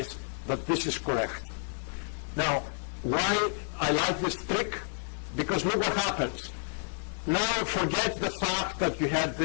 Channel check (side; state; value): right; silent; 58 dB below the other